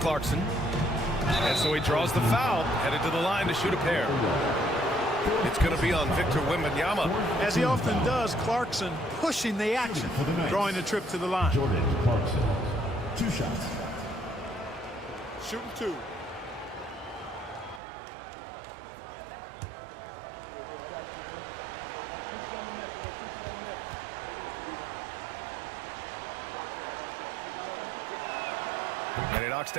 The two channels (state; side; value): drops out; left; at 17.8 s